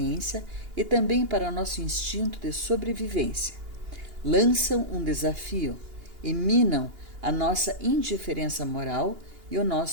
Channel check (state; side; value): late; left; 2.8 ms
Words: e também para nosso instinto de sobrevivência. Lançam um desafio e minam a nossa indiferença moral e o